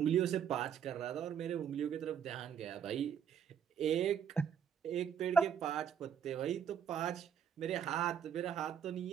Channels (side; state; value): left; quieter; 8.1 dB